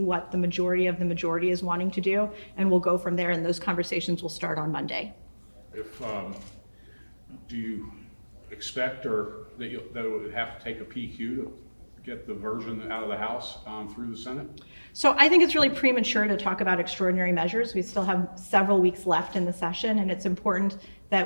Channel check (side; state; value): both; inverted; correlation -1.00